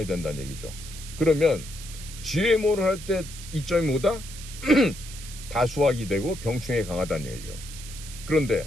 된다는 얘기죠. 그러면 GMO를 할 때 이점이 뭐다? 다수확이 되고 병충해에 강하다는 얘기예요. 그런데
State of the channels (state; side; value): noise; right; hiss, 13 dB below the sound